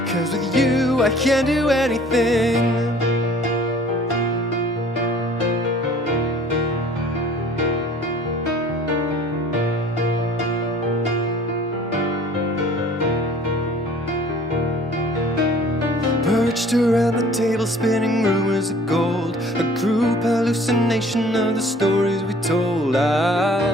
'Cause with you I can do anything. Perched around the table, spinning rumors of gold, a group hallucination of the stories we told.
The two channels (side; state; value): both; normal; correlation 0.51